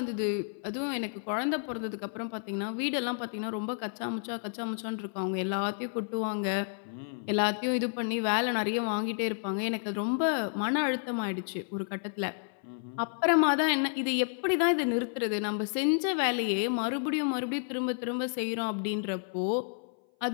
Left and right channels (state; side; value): silent; right; 56 dB below the other